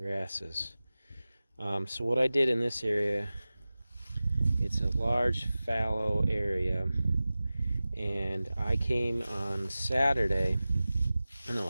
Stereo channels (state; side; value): inverted; both; correlation -0.96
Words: So what I did in this area, it's a large fallow area, and I came on Sunday